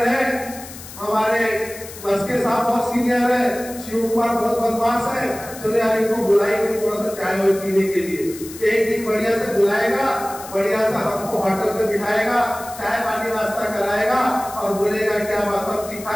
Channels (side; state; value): left; noise; hiss, 15 dB below the sound